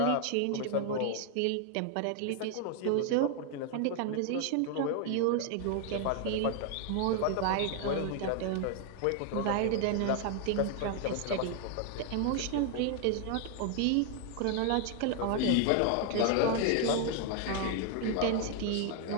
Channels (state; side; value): different; both; correlation 0.00